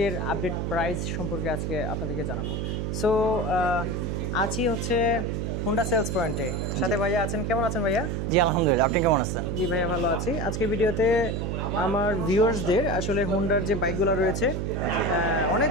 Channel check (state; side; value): noise; right; hum, 2 dB below the sound